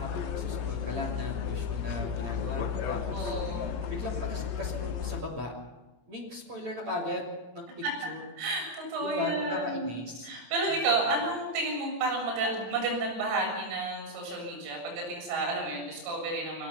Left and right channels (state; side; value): late; left; 17 ms